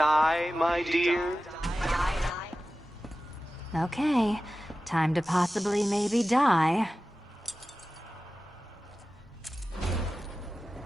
my dear? Okay. Time to possibly maybe die.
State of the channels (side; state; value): both; normal; correlation 0.95